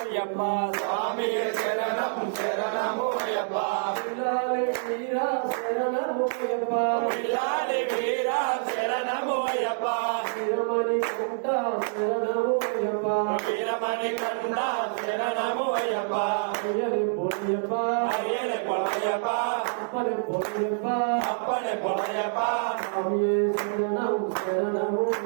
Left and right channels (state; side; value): silent; left; digital silence